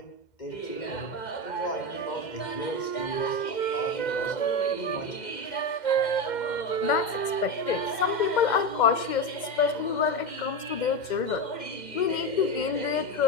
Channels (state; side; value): late; right; 2.1 ms